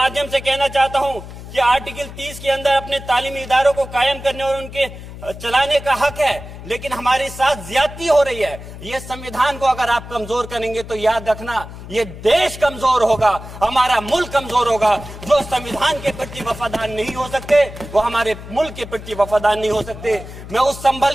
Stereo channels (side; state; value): left; noise; hum, 13 dB below the sound